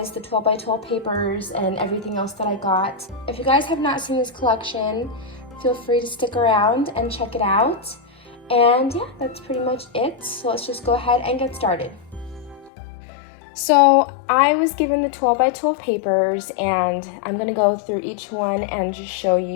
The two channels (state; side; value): drops out; right; at 12.7 s